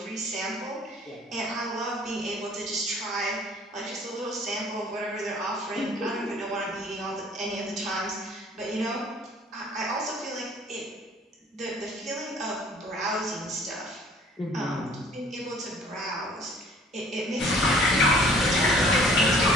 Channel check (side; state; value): both; normal; correlation 0.54